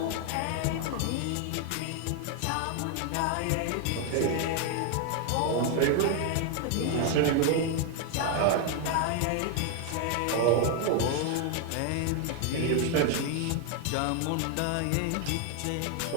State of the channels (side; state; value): both; different; correlation 0.01